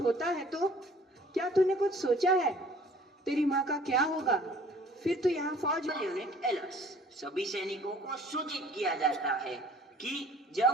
है तो क्या तूने कुछ सोचा है? तेरी माँ का क्या होगा? फिर तो यहाँ फौज में। यूनिट एलर्ट, सभी सैनिकों को सूचित किया जाता है कि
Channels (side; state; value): both; normal; correlation 0.53